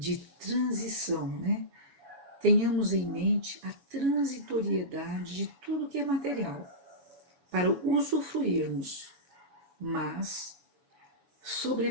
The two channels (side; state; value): left; late; 7.1 ms